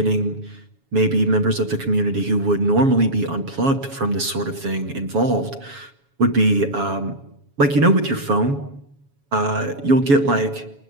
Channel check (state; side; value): late; left; 7.2 ms